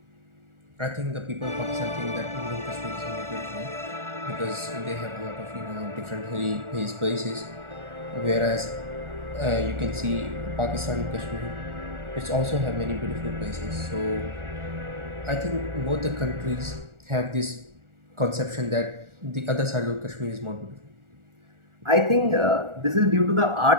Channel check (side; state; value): left; late; 1.4 ms